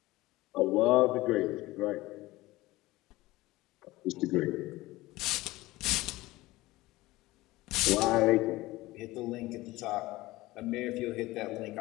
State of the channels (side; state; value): right; quieter; 18.9 dB